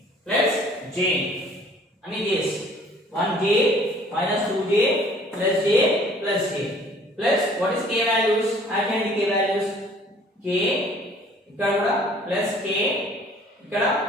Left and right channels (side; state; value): both; normal; correlation 0.55